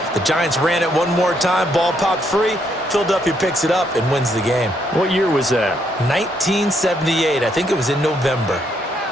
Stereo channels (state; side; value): normal; both; correlation 0.74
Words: The Giants ran it one more time. Ball popped free. Philadelphia picks it up and wins the game. What year was that? 1978. I think it was in November.